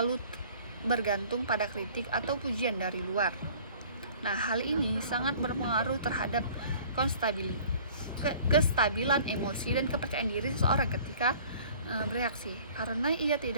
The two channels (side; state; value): both; inverted; correlation -0.50